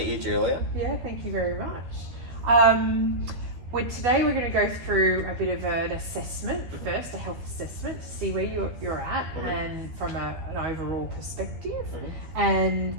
you, Julia. Yeah, thank you very much. Today we're going to go through a bit of an assessment first, a health assessment, to see where you're at and from an overall perspective. And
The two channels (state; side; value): late; left; 12 ms